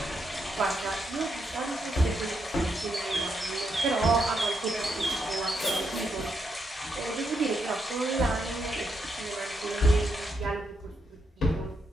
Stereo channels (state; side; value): normal; both; correlation 0.80